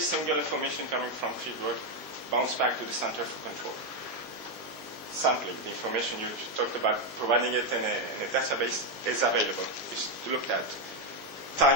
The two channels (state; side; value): normal; both; correlation 0.05